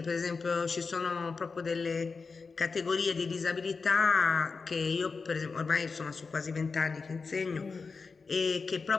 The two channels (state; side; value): quieter; right; 4.6 dB